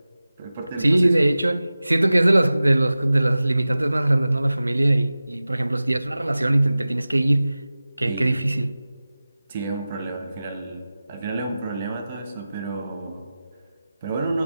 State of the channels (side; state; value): both; inverted; correlation -0.96